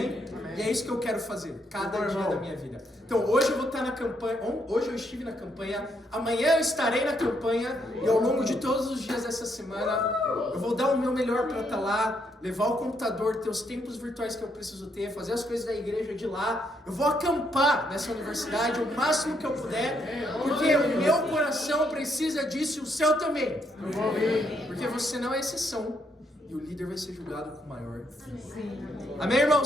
Amém. E é isso que eu quero fazer, cada dia da minha vida. Então, hoje eu vou estar na campanha, hoje eu estive na campanha, amanhã eu estarei na campanha, e ao longo de todos os dias dessa semana, eu vou dar o meu melhor para estar lá, levar o computador, ter os tempos virtuais que eu preciso ter, fazer as coisas da igreja de lá. Eu vou acampar nessa universidade o máximo que eu puder, porque o meu coração precisa disso e o seu também. Porque você não é exceção. E o líder vai ser julgado com maior. Amém,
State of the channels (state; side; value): normal; both; correlation 0.75